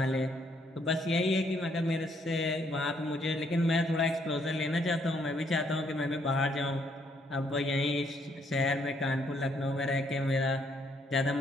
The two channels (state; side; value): normal; both; correlation 0.70